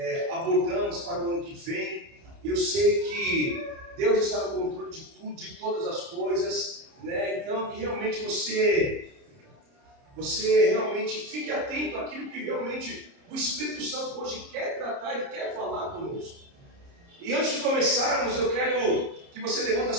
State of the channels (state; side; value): late; left; 30 ms